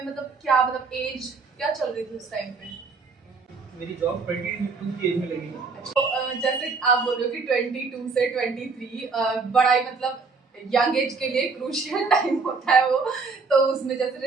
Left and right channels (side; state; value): left; quieter; 4.5 dB